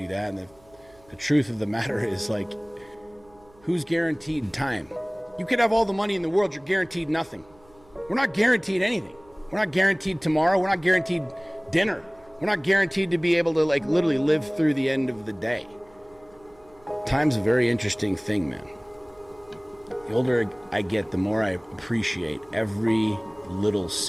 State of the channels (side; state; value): right; noise; hum, 29 dB below the sound